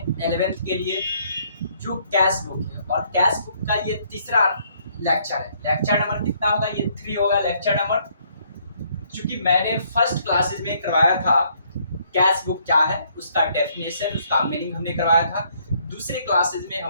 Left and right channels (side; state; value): both; inverted; correlation -0.67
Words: 11th के लिए जो कैश बुक है और कैश बुक का ये तीसरा लेक्चर है। लेक्चर नंबर कितना होगा? ये 3 होगा लेक्चर नंबर। क्योंकि मैंने फर्स्ट क्लासेस में करवाया था कैश बुक क्या है, उसका डेफिनेशन, उसका मीनिंग हमने करवाया था। दूसरे क्लासेस में